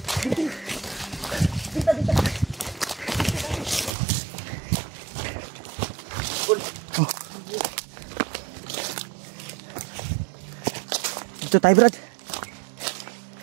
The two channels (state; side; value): drops out; left; at 3.9 s